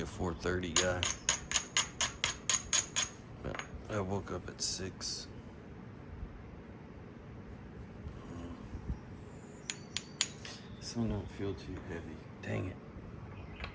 a 4:30 guy. But I woke up at 6. This one don't feel too heavy. Dang it.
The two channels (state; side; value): identical; both; correlation 1.00